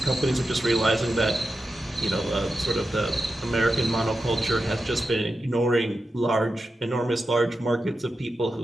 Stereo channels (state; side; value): normal; both; correlation 0.90